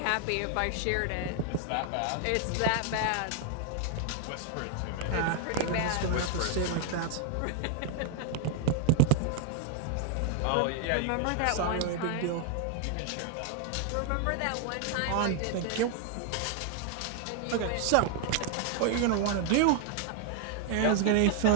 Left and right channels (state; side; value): different; both; correlation 0.00